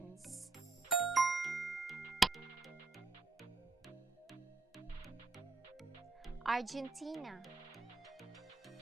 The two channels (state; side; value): quieter; left; 3.6 dB